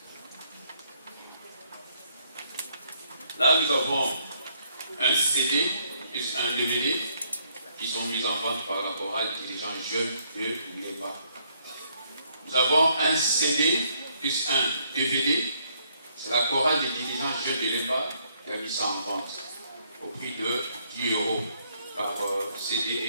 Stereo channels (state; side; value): inverted; both; correlation -0.70